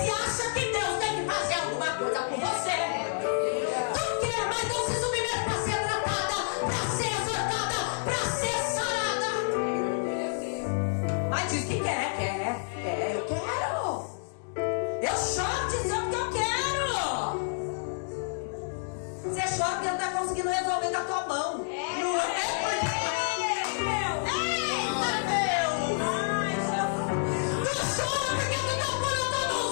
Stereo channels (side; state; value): right; silent; digital silence